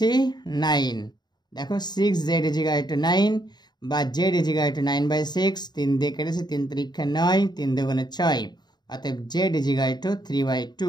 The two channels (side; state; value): right; late; 0.20 ms